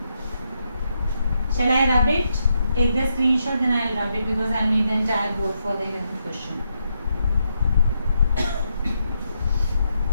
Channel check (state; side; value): inverted; both; correlation -0.81